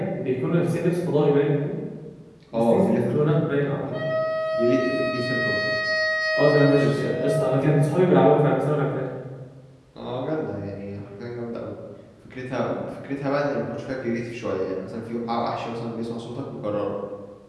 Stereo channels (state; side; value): identical; both; correlation 1.00